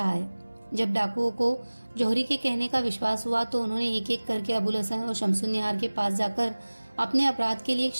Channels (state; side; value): inverted; both; correlation -1.00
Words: है। जब डाकुओं को जौहरी के कहने का विश्वास हुआ तो उन्होंने एक एक करके अबुल हसन और शमसुन्निहार के पास जाकर अपने अपराध के लिए